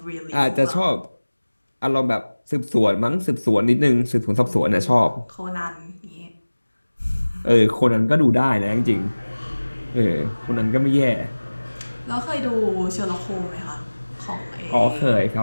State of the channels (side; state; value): both; inverted; correlation -1.00